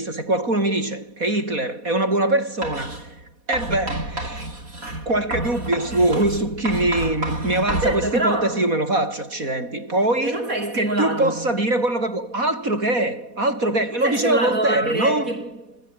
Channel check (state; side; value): late; left; 4.1 ms